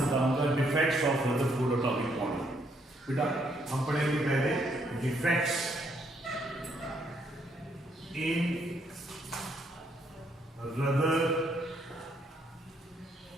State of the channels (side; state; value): both; normal; correlation 0.72